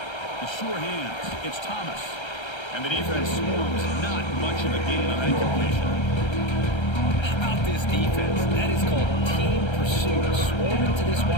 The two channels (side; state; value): right; late; 1.3 ms